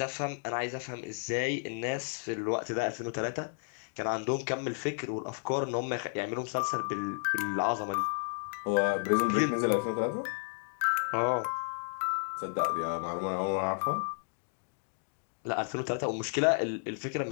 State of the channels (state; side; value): silent; right; digital silence